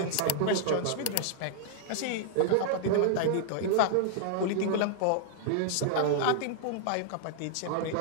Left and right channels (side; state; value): both; different; correlation -0.01